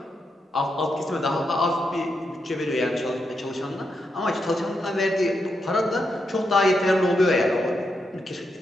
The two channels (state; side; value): normal; both; correlation 0.83